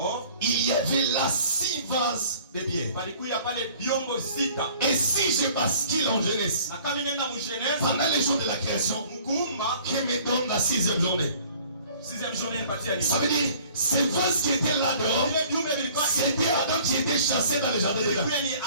il y avait là 6 vases de pierre. Et si je bascule en jeunesse, pendant les jours de la création, qui me donne la 6e journée. Ça veut dire, ces vases qui étaient là dehors, c'était Adam qui était chassé dans le jardin de Dieu.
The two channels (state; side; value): inverted; both; correlation -0.52